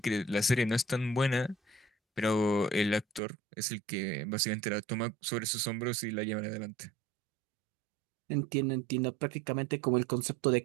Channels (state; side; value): drops out; left; at 3.2 s